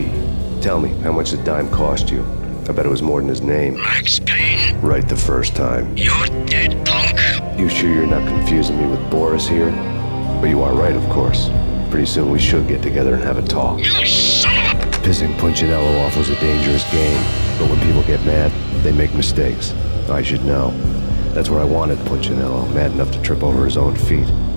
tell me, how much did Dime cost you? I bet it was more than his name. Max Payne, Right the first time. you're dead, punk. You sure you're not confusing me with Boris here? But you are right, of course. Pretty soon we should get together and have a talk. You son of a... Pissing Punchinello off was a dangerous game, but when people get mad, they make mistakes. I should know. That's where I wanted Punchinello, mad enough to trip over his own feet,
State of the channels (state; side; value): inverted; both; correlation -1.00